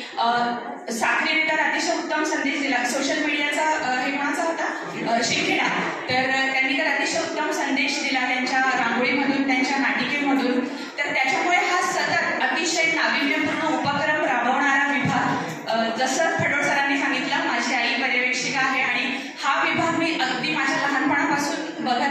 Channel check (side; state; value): both; identical; correlation 1.00